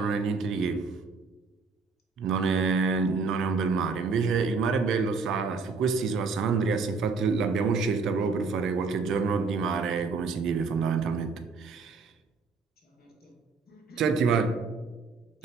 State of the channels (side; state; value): left; quieter; 4.6 dB